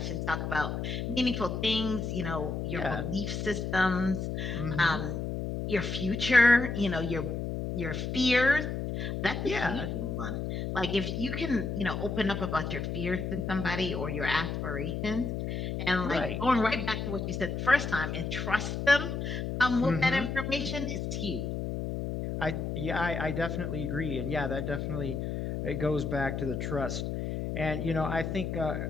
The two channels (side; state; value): left; noise; hum, 3 dB below the sound